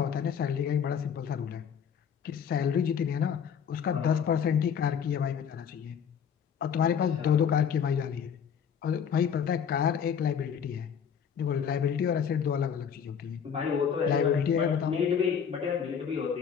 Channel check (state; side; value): quieter; right; 7.5 dB